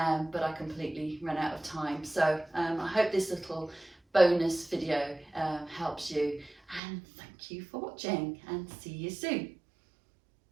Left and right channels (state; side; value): drops out; left; at 6.8 s